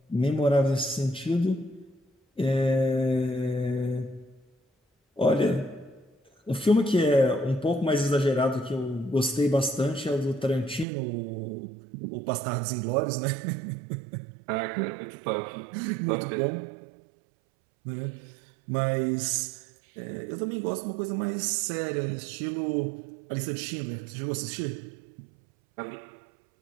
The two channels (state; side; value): drops out; left; at 10.9 s